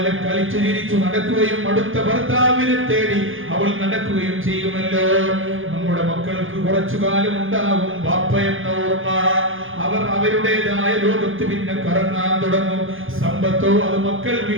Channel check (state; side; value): late; left; 0.58 ms